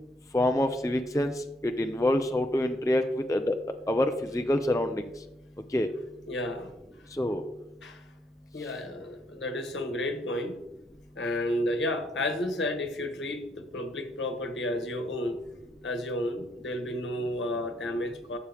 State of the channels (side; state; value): both; normal; correlation 0.73